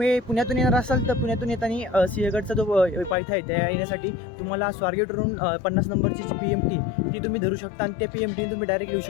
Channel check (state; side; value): drops out; right; at 3.2 s